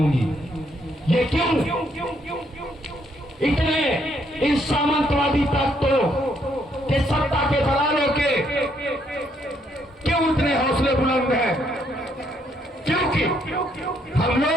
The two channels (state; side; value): normal; both; correlation 0.71